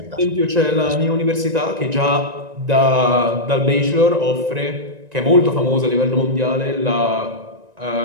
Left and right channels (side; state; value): left; late; 1.9 ms